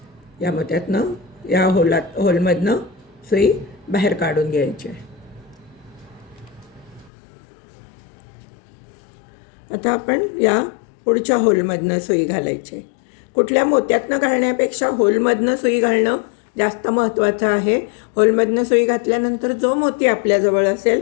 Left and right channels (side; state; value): right; drops out; at 7.1 s